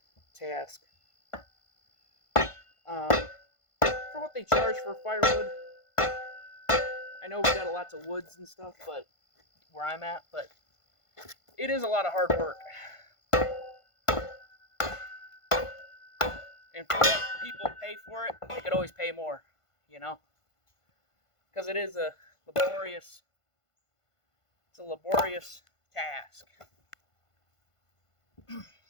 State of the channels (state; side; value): late; right; 1.5 ms